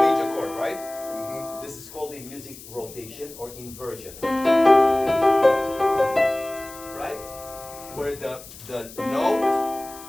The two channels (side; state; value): left; noise; hiss, 17 dB below the sound